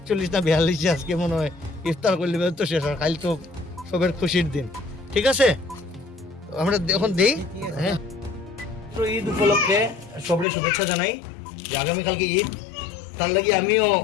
না 42 আজকে মনে হয় ইফতার করলে তো শেষ, আর কাল তো সবের খুশির দিন, ঠিক আছে? আমরা এখন দেই। হ্যাঁ, ঈদ উপলক্ষে সবরে শুভেচ্ছা জানাই যে আগামীকালকে ঈদ, তার লাগি আমিও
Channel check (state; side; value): drops out; right; at 10.5 s